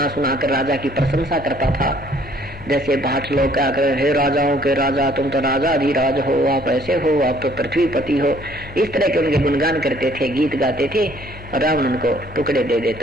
कर राजा की प्रशंसा करता था। जैसे भाट लोग क्या कर, हे राजाओं के राजा, तुम तो राजा अधिराज हो, आप ऐसे हो, आप तो पृथ्वीपति हो, इस तरह के उनके गुणगान करते थे, गीत गाते थे। और रावण उनको टुकड़े दे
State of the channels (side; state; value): both; normal; correlation 0.60